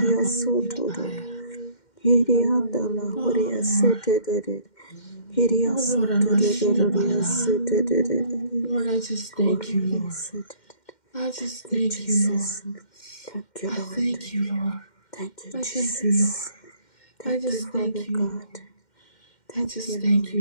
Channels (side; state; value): right; late; 2.1 ms